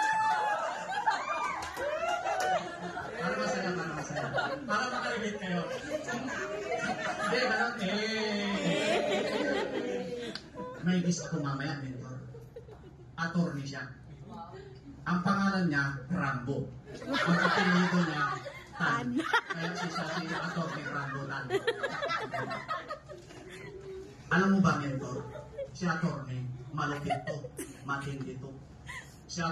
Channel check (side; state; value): both; identical; correlation 1.00